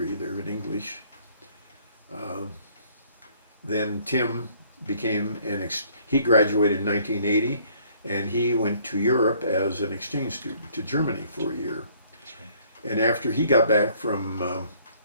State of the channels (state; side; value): inverted; both; correlation -0.61